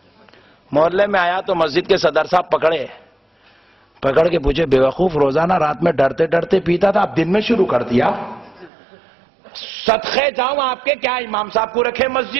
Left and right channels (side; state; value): left; drops out; at 8.7 s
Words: محلے میں آیا تو مسجد کے صدر صاحب پکڑے، پکڑ کے پوچھے بیوقوف روزانہ رات میں ڈرتے ڈرتے پیتا تھا، اب دن میں شروع کر دیا؟ صدقے جاؤں آپ کے، کیا امام صاحب کو رکھے